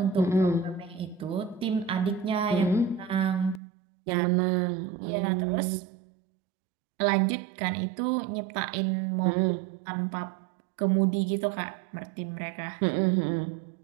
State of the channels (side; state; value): left; drops out; at 3.6 s